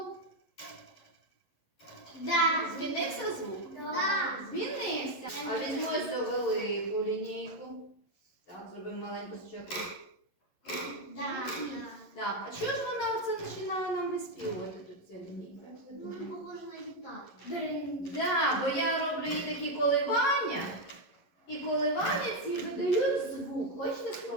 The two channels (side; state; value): right; late; 11 ms